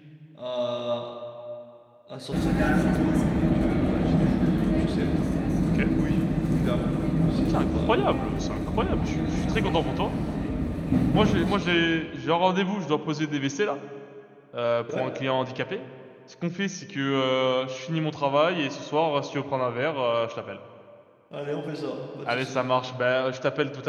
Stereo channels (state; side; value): identical; both; correlation 1.00